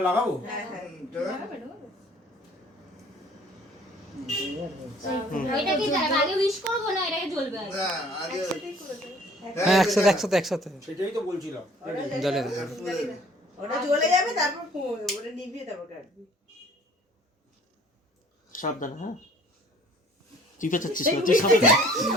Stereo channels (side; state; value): both; normal; correlation 0.54